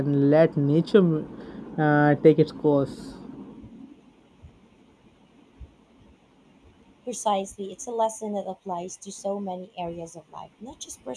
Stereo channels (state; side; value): identical; both; correlation 1.00